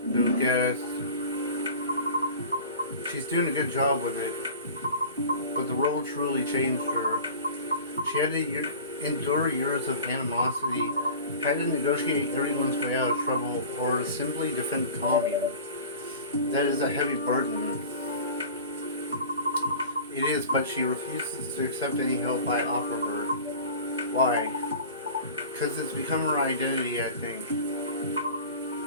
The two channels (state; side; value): inverted; both; correlation -0.39